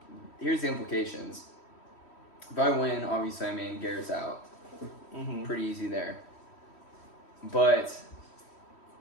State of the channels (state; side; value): late; right; 3.1 ms